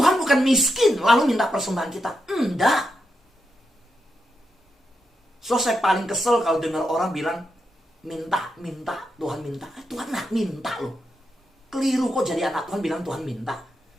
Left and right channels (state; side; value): normal; both; correlation 0.85